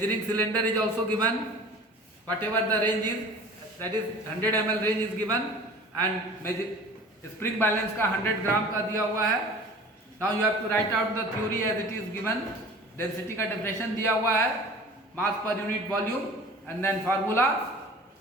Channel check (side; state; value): both; normal; correlation 0.42